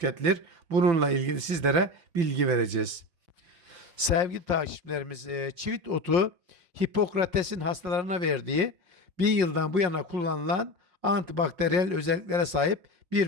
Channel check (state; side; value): late; left; 5.6 ms